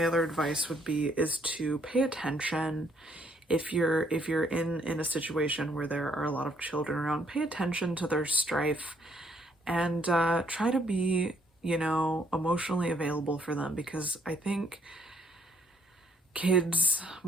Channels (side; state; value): both; normal; correlation 0.67